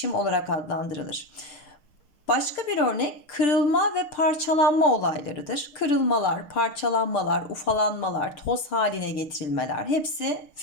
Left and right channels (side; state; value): right; late; 6.4 ms